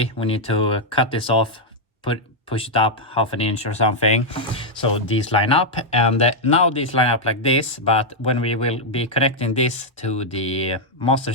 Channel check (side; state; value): both; normal; correlation -0.02